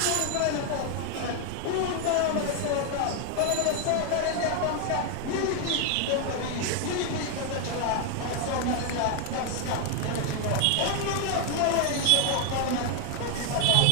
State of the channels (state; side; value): different; both; correlation 0.01